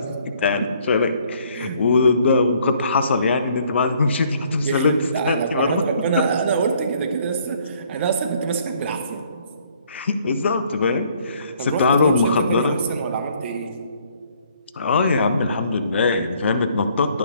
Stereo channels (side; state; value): both; inverted; correlation -0.63